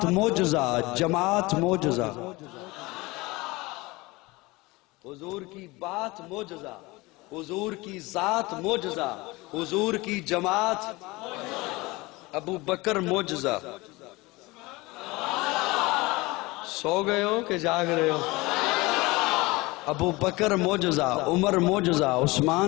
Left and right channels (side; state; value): right; quieter; 22.5 dB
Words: معجزہ, جماعت معجزہ. حضور کی بات معجزہ, حضور کی ذات معجزہ, حضور کی جماعت. ابو بکر معجزہ. سو گئے ہو کہ جاگ رہے ہو؟ ابو بکر معجزہ, عمر معجزہ,